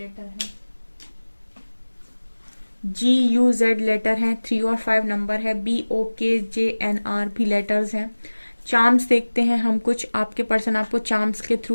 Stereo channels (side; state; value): both; inverted; correlation -1.00